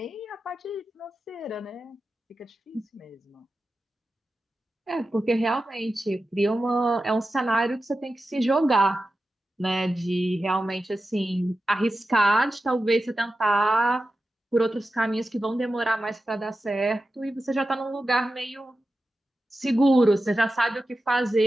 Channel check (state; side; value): normal; both; correlation 0.92